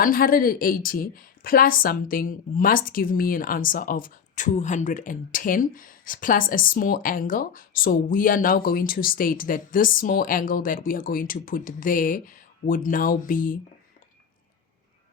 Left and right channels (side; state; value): right; quieter; 7.0 dB